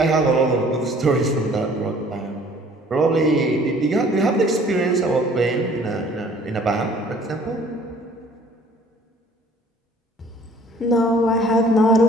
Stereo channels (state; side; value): normal; both; correlation 0.54